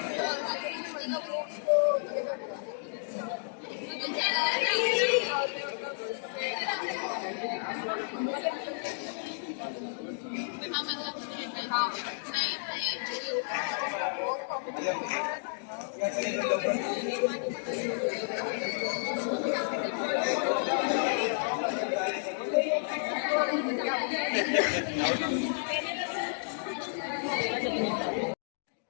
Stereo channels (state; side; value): silent; right; digital silence